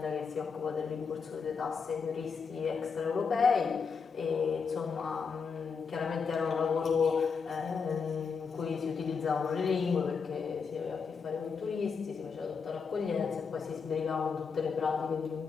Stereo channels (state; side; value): quieter; right; 5.6 dB